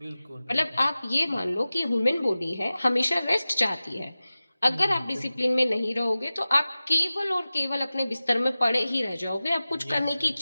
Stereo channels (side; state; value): both; inverted; correlation -0.96